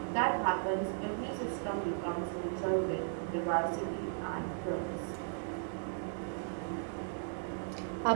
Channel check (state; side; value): silent; left; digital silence